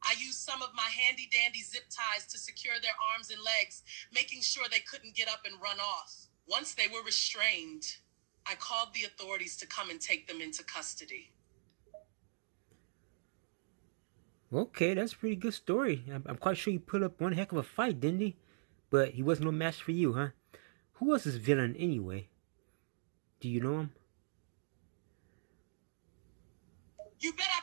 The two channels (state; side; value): silent; left; digital silence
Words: I used some of my handy dandy zip ties to secure their arms and legs, making sure they couldn't get up and run off. Once they were restrained, I called the authorities to come and take them into custody. Okay, that's a pretty good story. I'm quite sure you put up one heck of a fight, didn't he? But he wasn't no match for you, huh? Who was this villain anyway? Do you know him? You bet I